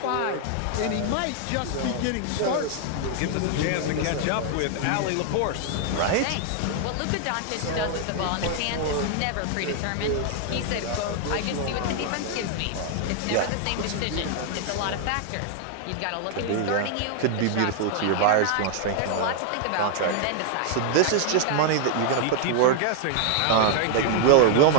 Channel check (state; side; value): different; both; correlation 0.00